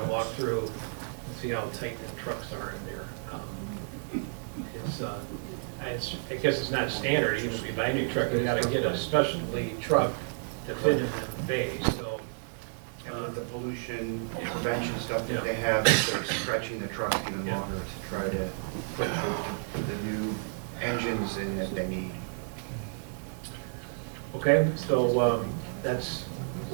to walk through and see how tight the trucks are in there. I guess it's not standard, even if you buy a new truck, you gotta get a specialty truck to fit in the bay, so. and with the pollution prevention stuff that they have, they're stretching the trucks even longer to try to put the new engines in that they need. Okay, so that's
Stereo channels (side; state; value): left; silent; digital silence